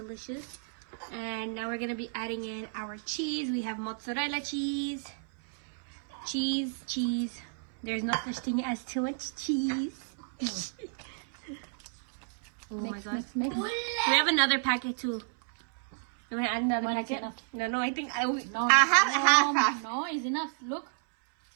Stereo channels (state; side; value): silent; left; 57 dB below the other